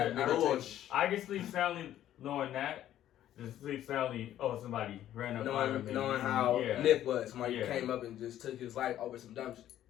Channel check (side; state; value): right; quieter; 12.1 dB